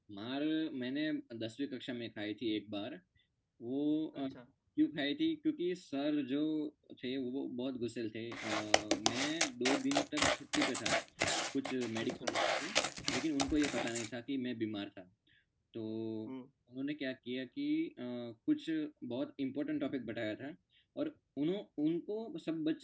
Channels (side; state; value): both; identical; correlation 1.00